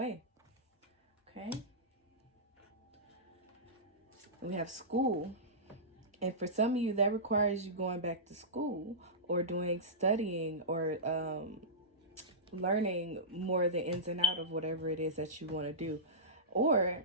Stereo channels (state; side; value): normal; both; correlation -0.18